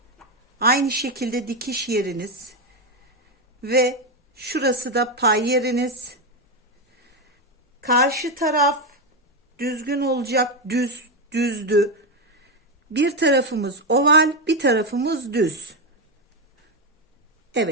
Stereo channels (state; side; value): normal; both; correlation 0.08